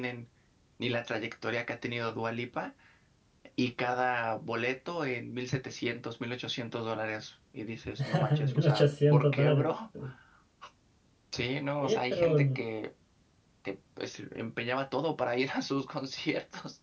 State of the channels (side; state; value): both; identical; correlation 1.00